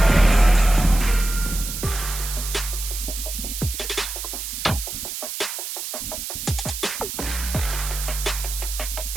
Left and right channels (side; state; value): right; noise; hiss, 6 dB below the sound